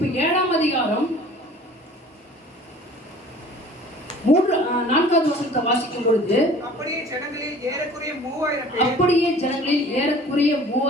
7ஆம் அதிகாரம் 4வது வசனத்தை வாசிக்கும் பொழுது, அப்படியே ஜனங்களில் ஏறக்குறைய 3000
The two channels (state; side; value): normal; both; correlation 0.47